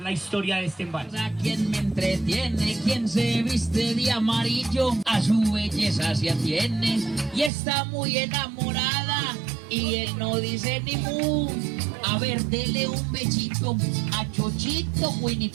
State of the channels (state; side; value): drops out; left; at 7.5 s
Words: historia de este embalse. A quien me entretiene, quien se viste de amarillo, a su belleza se atiene y está muy enamorada y él no dice ni mu. A ver, dele un bechito a Chochito Winnie